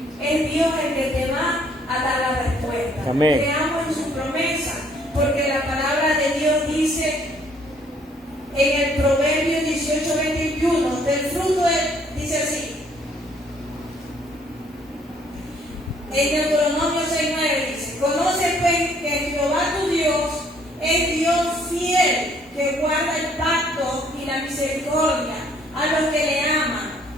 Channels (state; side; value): normal; both; correlation 0.64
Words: es Dios el que te va a dar la respuesta. Amén. Creamos en su promesa, porque la palabra de Dios dice en el Proverbio 18:21, del fruto dice así, en Deuteronomio 6:9 dice, conoce pues que Jehová tu Dios es Dios fiel, que guarda el pacto y la misericordia a los que le aman